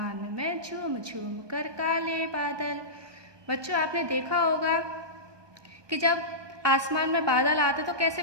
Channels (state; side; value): late; left; 1.2 ms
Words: में, झूम झूम कर काले बादल। बच्चों, आपने देखा होगा कि जब आसमान में बादल आते तो कैसे